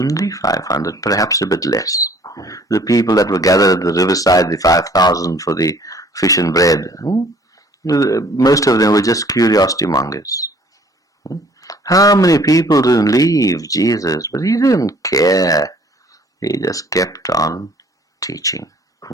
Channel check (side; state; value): both; normal; correlation 0.56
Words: 500, perhaps a bit less. The people that were gathered at the riverside, the 5,000 for the fish and bread, most of them were just curiosity mongers. How many people didn't leave Jesus? But he didn't care. He just kept on teaching.